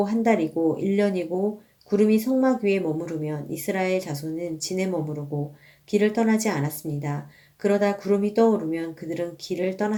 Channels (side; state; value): both; identical; correlation 1.00